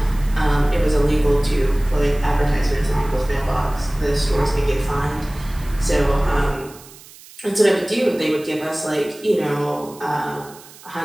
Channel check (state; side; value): noise; right; hiss, 21 dB below the sound